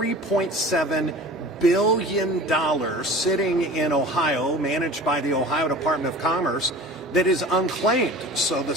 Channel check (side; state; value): both; normal; correlation 0.40